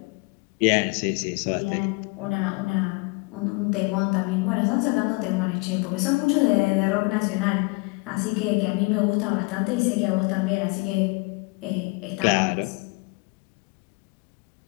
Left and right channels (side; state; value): right; quieter; 29.2 dB